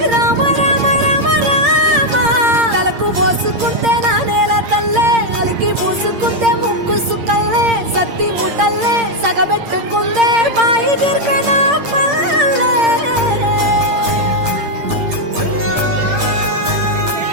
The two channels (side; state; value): left; late; 8.7 ms